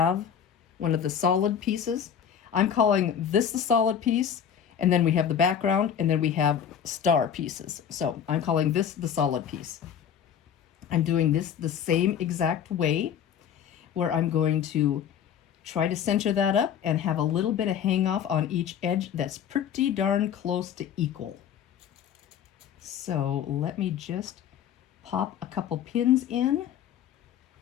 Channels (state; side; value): quieter; right; 8.6 dB